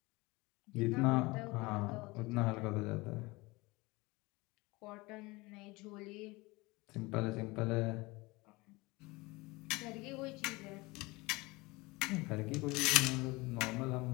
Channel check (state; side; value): quieter; right; 23.2 dB